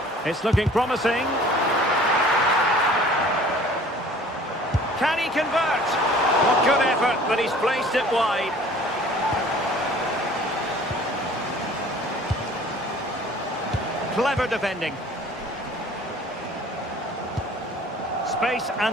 It's looking promising. Can he convert? What good effort, but he's placed it wide. Clever defending. Space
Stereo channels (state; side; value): normal; both; correlation 0.49